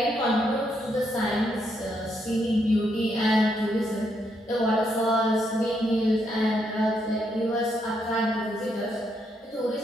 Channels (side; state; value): both; normal; correlation 0.77